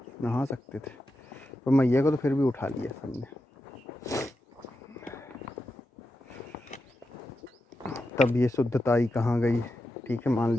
नहा सकते थे, पर मैया को तो फिर भी उठा लिया सबने। तब ये शुद्धताई कहाँ गई। ठीक है, मान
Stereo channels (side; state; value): both; normal; correlation 0.88